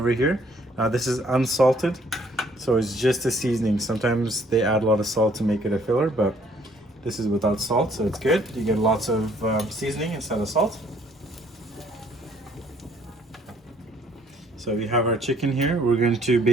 here. Now this is unsalted, so So it's just a seasoning. Sometimes they add a lot of salt to make it a filler, but this is without salt, so it's good. You get lots of seasoning instead of salt. So we have our chicken here. We're going to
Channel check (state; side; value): normal; both; correlation 0.63